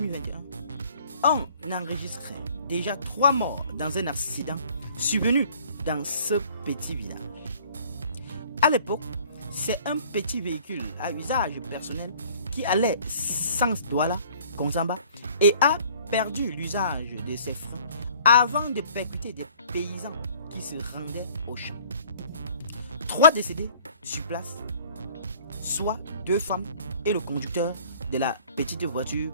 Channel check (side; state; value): both; inverted; correlation -0.54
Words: on enregistrait déjà 3 morts dans un accident survenu dans ce petit village. À l'époque, c'est un petit véhicule à usage personnel qui allait sans Douala, Konsamba, et a perdu l'usage de ses freins avant de percuter des paysans qui se rendaient au champ. 3 décédés sur place, soit 2 femmes et le conducteur de la petite voiture